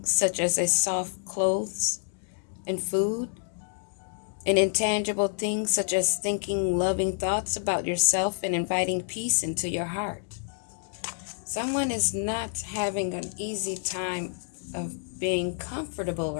such as a soft clothes and food, and intangible things such as thinking loving thoughts about yourself and inviting peace into your heart. Someone is not having an easy time of being comfortable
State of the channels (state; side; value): silent; right; digital silence